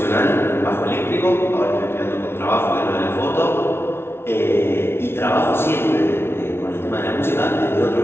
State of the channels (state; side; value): late; right; 0.12 ms